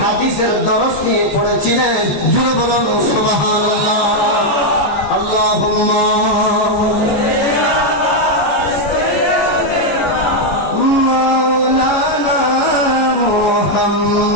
হাদিসের দরস নিয়ে পড়েছিলেন। জুড়ে বলুন সুবহানাল্লাহ। আল্লাহুম্মা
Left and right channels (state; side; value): late; right; 14 ms